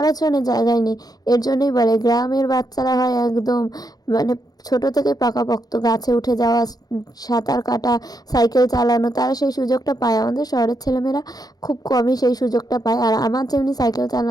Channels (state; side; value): late; right; 0.19 ms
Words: জন্য জায়গায় নেই। এর জন্যই বলে গ্রামের বাচ্চারা হয় একদম মানে ছোট থেকে পাকাপোক্ত, গাছে উঠে যাওয়া, সাঁতার কাটা, সাইকেল চালানো, তারা সেই সুযোগটা পায়। আমাদের শহরের ছেলেমেয়েরা খুব কমই সেই সুযোগটা পায়। আর আমার যেমনি সাইকেল